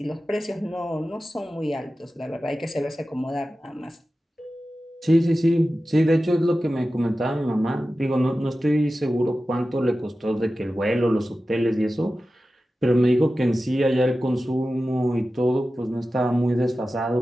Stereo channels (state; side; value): normal; both; correlation 0.94